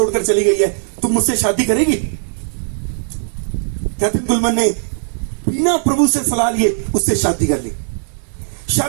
चली गई है, तुम मुझसे शादी करेगी? कैथरीन कुलमन ने बिना प्रभु से सलाह लिए उससे शादी कर ली।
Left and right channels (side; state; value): left; silent; 68 dB below the other